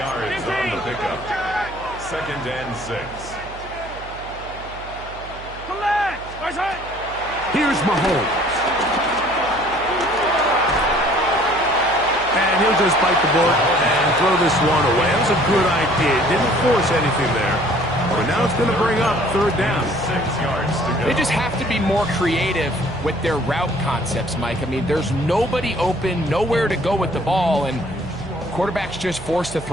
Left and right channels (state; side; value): noise; right; hum, 16 dB below the sound